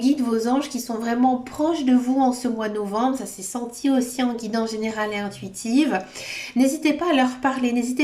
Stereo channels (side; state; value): both; identical; correlation 1.00